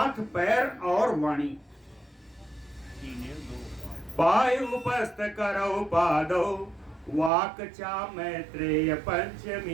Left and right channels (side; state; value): left; drops out; at 7.3 s